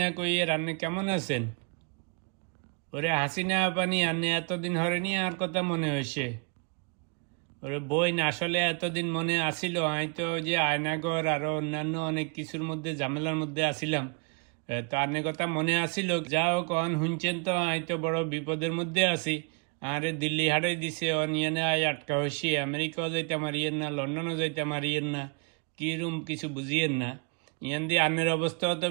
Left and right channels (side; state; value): left; quieter; 36.6 dB